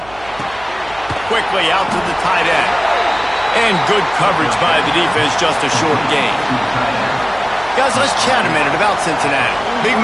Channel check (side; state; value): right; noise; hum, 21 dB below the sound